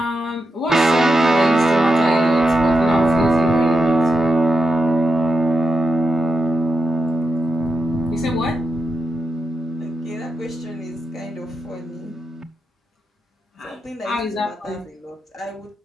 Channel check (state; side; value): normal; both; correlation 0.86